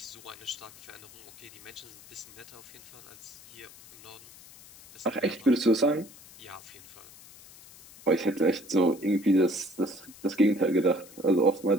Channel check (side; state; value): left; noise; hiss, 20 dB below the sound